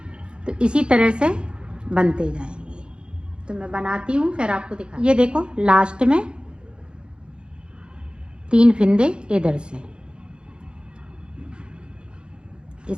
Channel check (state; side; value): late; left; 0.053 ms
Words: तो इसी तरह से बनते जाएंगे। तो मैं बनाती हूँ फिर आपको दिखा। ये देखो लास्ट में 3 फिंदे इधर से,